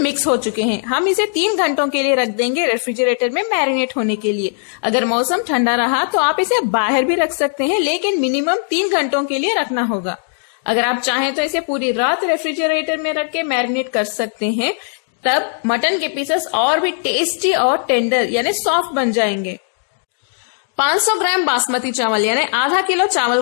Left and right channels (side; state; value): right; silent; digital silence